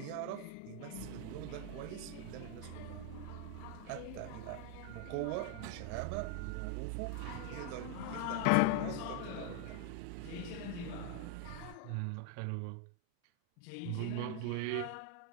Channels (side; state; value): both; different; correlation 0.00